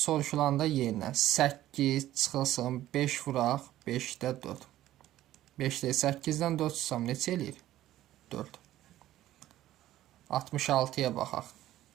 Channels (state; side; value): quieter; left; 14.0 dB